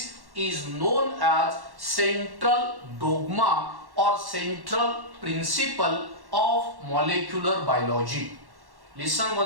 is known as central dogma or central principle of molecular biology. Listen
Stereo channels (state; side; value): late; left; 1.1 ms